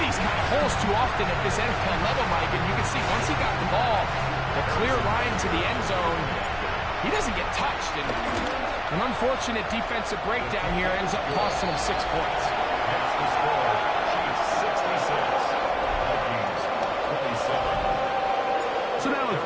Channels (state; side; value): identical; both; correlation 1.00